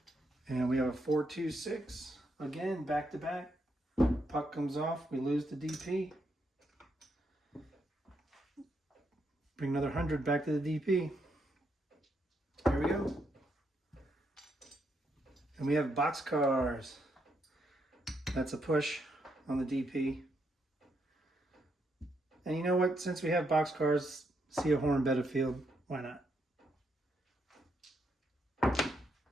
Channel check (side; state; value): both; normal; correlation 0.78